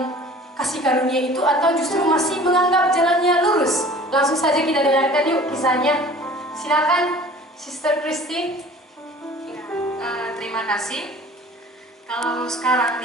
kasih karunia itu atau justru masih menganggap jalannya lurus? Langsung saja kita dengarkan yuk kisahnya. Silakan Sister Kristi. Ya, terima kasih. Kalau sekarang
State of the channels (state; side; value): normal; both; correlation 0.46